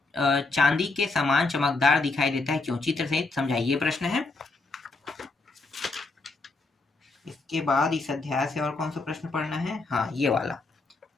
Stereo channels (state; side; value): quieter; right; 3.5 dB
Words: चांदी के समान चमकदार दिखाई देता है, क्यों? चित्र सहित समझाइए, प्रश्न है। इसके बाद इस अध्याय से और कौन सा प्रश्न पढ़ना है? हाँ, ये वाला,